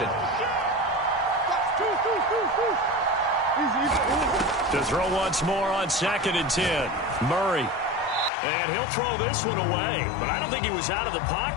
To throw once more on 2nd and 10. Murray. And he'll throw this one away. But I don't think he was out of the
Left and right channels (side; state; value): right; drops out; at 8.3 s